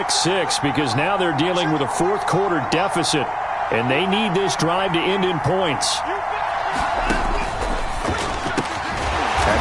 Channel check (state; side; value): identical; both; correlation 1.00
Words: 6 because now they're dealing with a 4th quarter deficit. And they need this drive to end in points. And